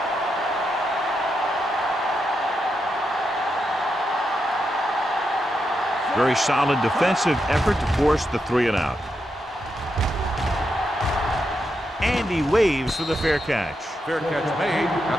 Very solid defensive effort to force the 3-and-out. And he waves for the fair catch. Fair catch made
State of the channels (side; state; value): both; normal; correlation 0.84